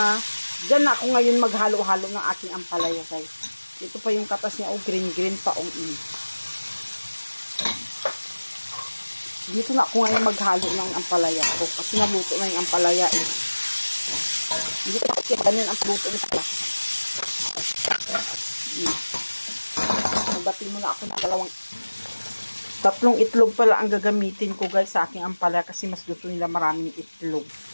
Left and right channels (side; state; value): both; inverted; correlation -1.00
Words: Diyan na ako ngayon maghalo-halo ng aking ampalaya, guys. Ito pa yung katas niya, green-green pa, Dito na ako ngayon maghalo ng ampalaya ko. Kasi naluto na yung ampalaya, Hindi ko kasi ganyan ang luto nito. Magbati muna ako ng tatlong itlog pala ang gagamitin ko guys sa aking ampalaya kasi mas gusto nila maraming itlog.